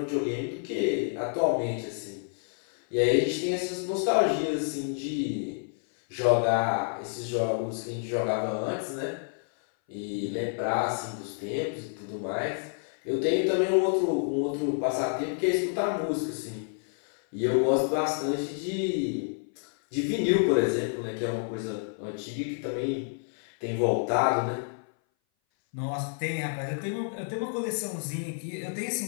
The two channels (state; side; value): silent; right; 58 dB below the other